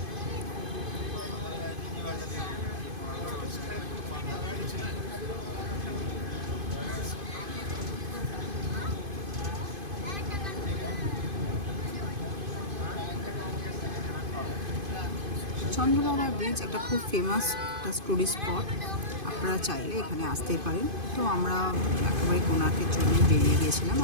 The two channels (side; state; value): left; late; 2.5 ms